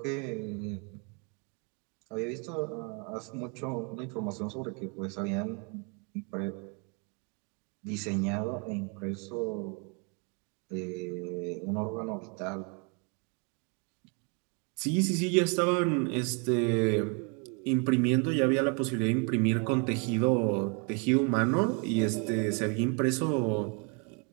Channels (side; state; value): left; quieter; 34.6 dB